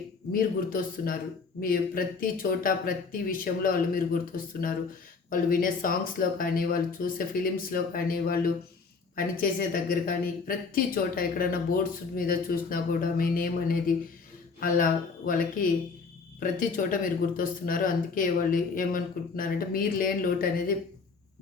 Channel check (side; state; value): right; quieter; 4.8 dB